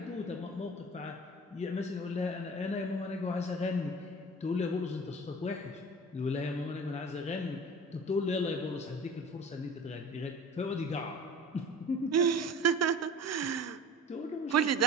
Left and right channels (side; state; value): both; normal; correlation 0.40